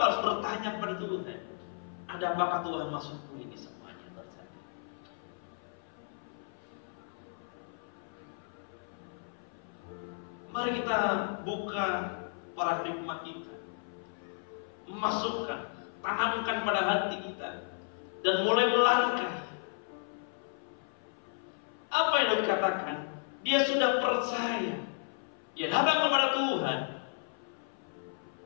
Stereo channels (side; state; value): right; silent; 55 dB below the other